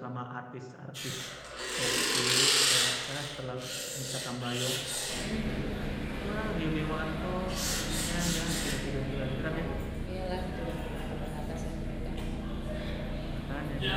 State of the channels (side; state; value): both; identical; correlation 1.00